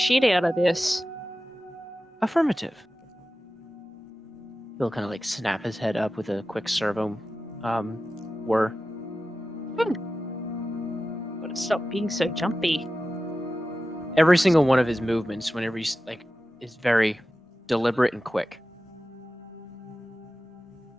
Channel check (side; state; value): both; normal; correlation 0.94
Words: out of this. Affirmative. He'll kind of like snap his head up with a quick servo whir. Gotta stop being so jumpy. Every single one of his movements, whenever he's like, is very deliberate and quick.